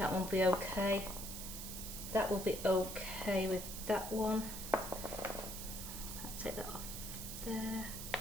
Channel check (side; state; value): right; noise; hiss, 7 dB below the sound